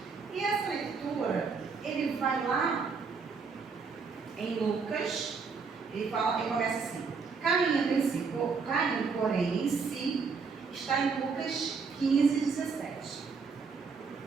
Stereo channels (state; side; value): quieter; left; 5.1 dB